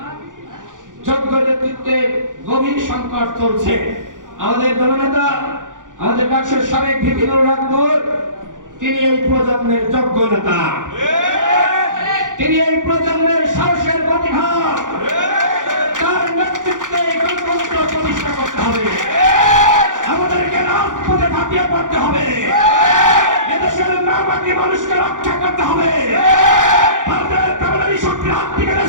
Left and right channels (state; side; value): late; left; 0.88 ms